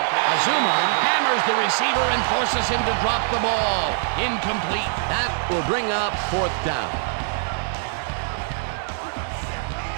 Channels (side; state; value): left; silent; digital silence